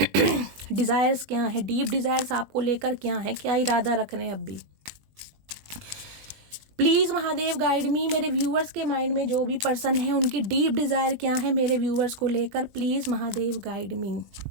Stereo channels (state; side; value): late; left; 20 ms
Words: डिज़ायर्स क्या है, डीप डिज़ायर्स आपको लेकर क्या है, क्या इरादा रख रहे हैं अब भी। प्लीज़ महादेव गाइड मी, मेरे व्यूअर्स के माइंड में जो भी पर्सन है उनकी डीप डिज़ायर क्या है मेरे व्यूअर्स को लेकर, please Mahadev guide me.